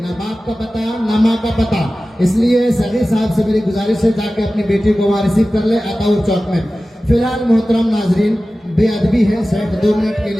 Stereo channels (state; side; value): normal; both; correlation 0.96